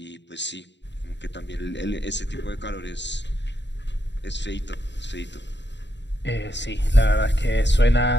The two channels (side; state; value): right; late; 0.52 ms